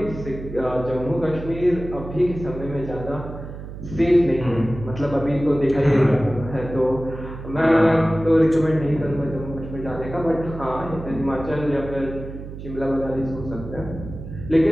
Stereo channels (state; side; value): noise; right; hum, 11 dB below the sound